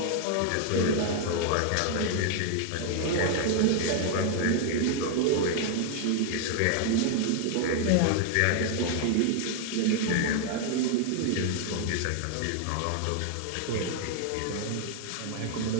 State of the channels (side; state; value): both; different; correlation 0.00